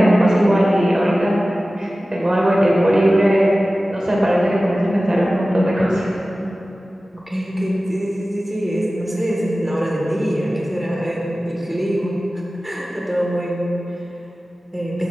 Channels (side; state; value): both; normal; correlation 0.96